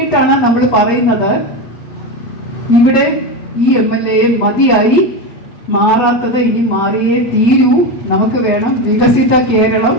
നമ്മൾ പറയുന്നത് ഇവിടെ ഈ MLA മതിയായി, മാറാത്തത് ഇനി മാറിയേ തീരൂ. നമുക്ക് വേണം വികസിത കേരളം,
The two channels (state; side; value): late; right; 8.1 ms